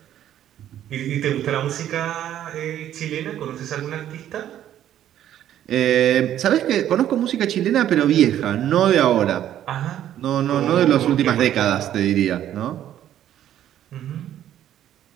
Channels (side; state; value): left; quieter; 11.4 dB